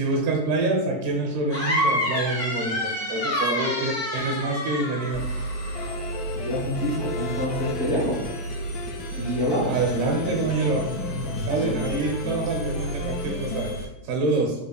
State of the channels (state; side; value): late; left; 4.1 ms